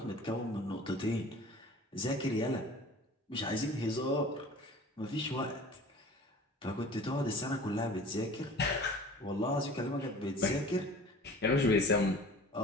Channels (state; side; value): normal; both; correlation 0.43